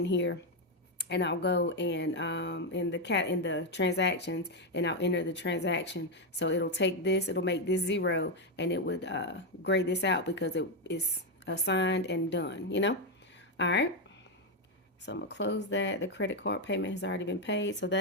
here and I'll go and in the transactions, and I'll enter the transaction. So it'll take this, it'll make this 0, and it would grade this out because it is assigned and done, you know? All right. So I'm gonna close that. The credit card payment has already been paid. So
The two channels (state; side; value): normal; both; correlation 0.04